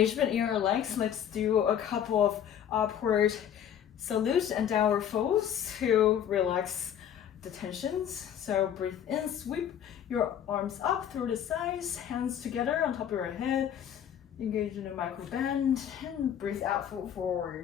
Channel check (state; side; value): quieter; right; 9.4 dB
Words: in your legs, let's do a couple of upward salutes and downward folds to relax the tensions. So breathe in, sweep your arms up through the sides, hands together on top of your head, engage in a micro bend, and breathe out, fold